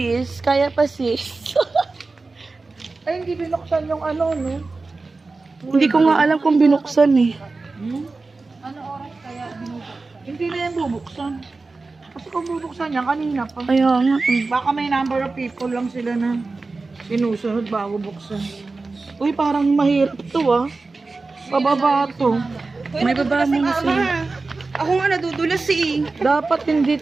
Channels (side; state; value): left; quieter; 3.7 dB